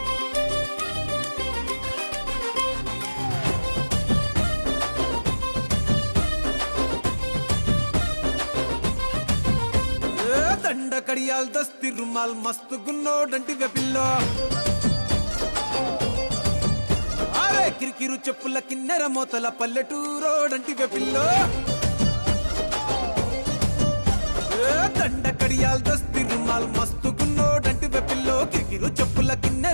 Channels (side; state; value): both; inverted; correlation -1.00